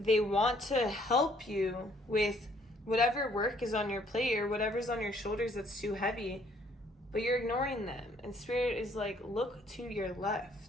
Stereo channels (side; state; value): both; normal; correlation 0.64